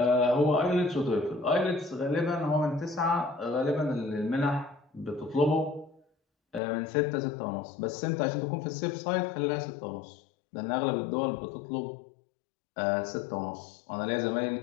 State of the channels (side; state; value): right; drops out; at 6.6 s